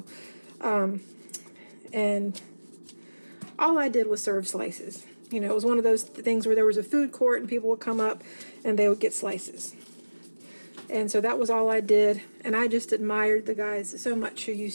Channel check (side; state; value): both; inverted; correlation -1.00